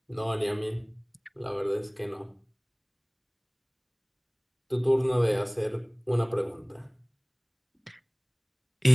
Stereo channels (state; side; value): identical; both; correlation 1.00